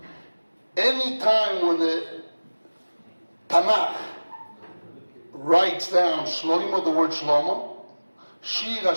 Any time when the Tanakh writes down Shlomo, the word Shlomo, Shir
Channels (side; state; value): both; inverted; correlation -1.00